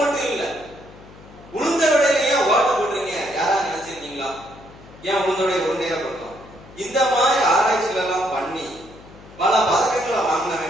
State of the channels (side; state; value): left; noise; hum, 21 dB below the sound